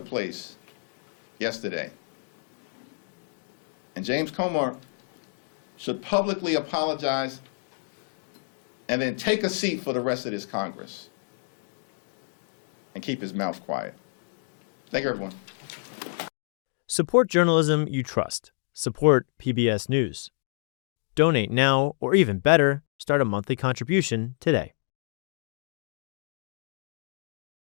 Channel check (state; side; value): silent; right; digital silence